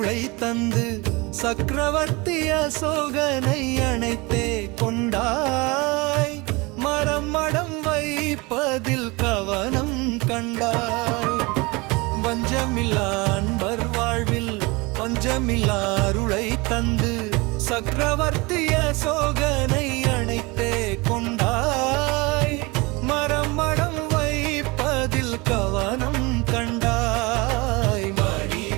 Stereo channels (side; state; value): left; quieter; 25.3 dB